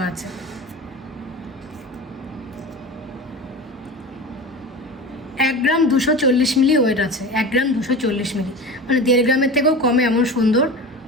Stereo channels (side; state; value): both; normal; correlation 0.31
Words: আছে। এক গ্রাম 240 মিলি ওয়েট আছে। 1 গ্রাম 240 মিলি মানে 1.5 গ্রামের থেকেও কমে এমন সুন্দর